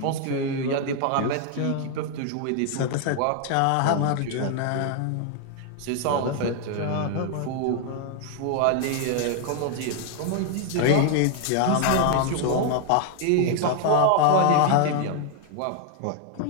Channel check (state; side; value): different; both; correlation 0.00